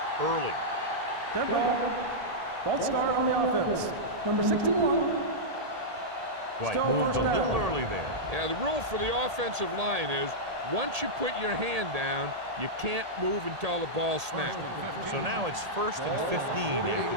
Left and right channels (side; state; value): left; late; 1.8 ms